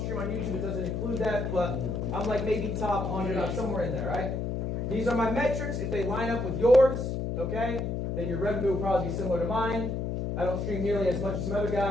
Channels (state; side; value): noise; left; hum, 2 dB below the sound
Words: stream on YouTube. It doesn't include that, but I'm like maybe top 100. I'm somewhere in there, right? These are my metrics. If they line up with yours, okay, then your revenue will probably be similar to mine. I don't stream nearly as much as some other